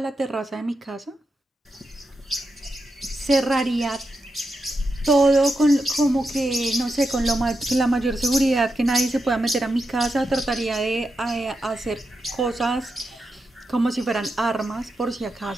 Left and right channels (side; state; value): both; normal; correlation 0.87